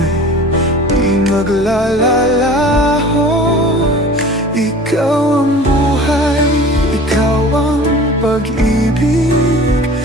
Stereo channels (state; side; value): normal; both; correlation 0.42